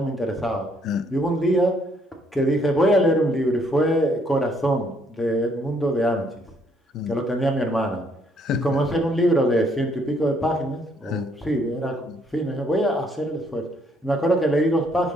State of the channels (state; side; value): normal; both; correlation 0.68